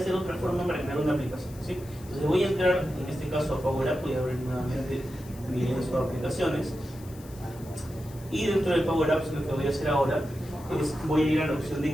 otra forma para crear una aplicación, ¿sí? Entonces voy a entrar, en este caso a Power App, voy a abrir nuevamente mi lienzo de aplicaciones, y dentro de Power Apps lo que voy a hacer ahora es, voy a ir a la opción de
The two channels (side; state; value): left; noise; hiss, 21 dB below the sound